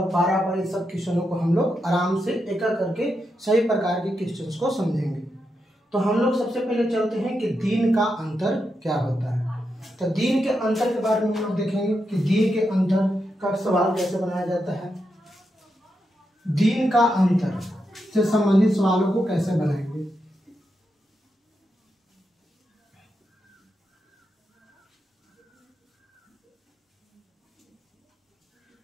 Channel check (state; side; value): normal; both; correlation 0.85